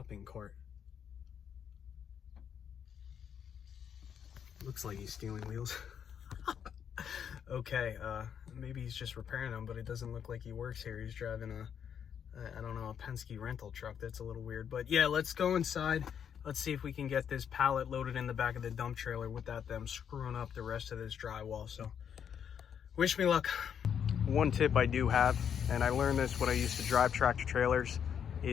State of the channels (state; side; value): quieter; right; 8.1 dB